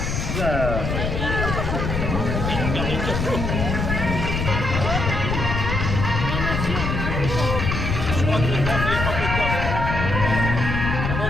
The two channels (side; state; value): left; noise; rumble, 2 dB below the sound